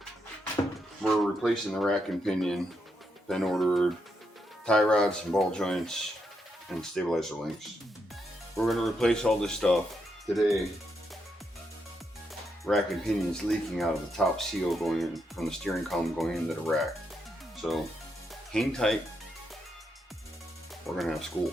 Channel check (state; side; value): normal; both; correlation 0.81